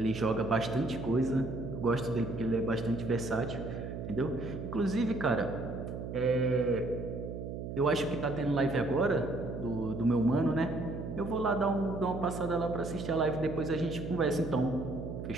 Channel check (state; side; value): noise; right; hum, 7 dB below the sound